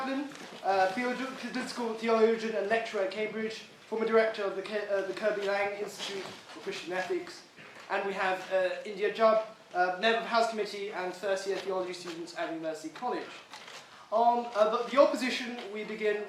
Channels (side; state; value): both; identical; correlation 1.00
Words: political theologian and lecturer at Cambridge, former director of the Kirby Lang Institute for Christian Ethics. And we have Jubb, member of the House Committee and first-year theology students at University College. On the opposition, we begin